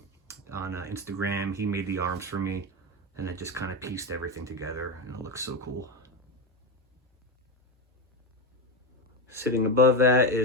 on Instagram. He made the arms for me, and then just kind of pieced everything together, and it looks so cool. Sitting above that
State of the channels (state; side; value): normal; both; correlation 0.12